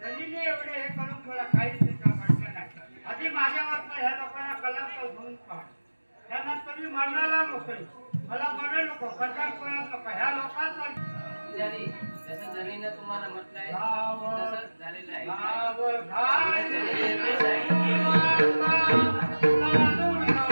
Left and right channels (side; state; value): both; inverted; correlation -1.00